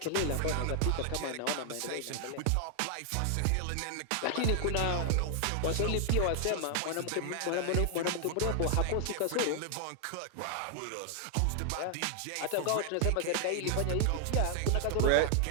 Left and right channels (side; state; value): both; different; correlation 0.00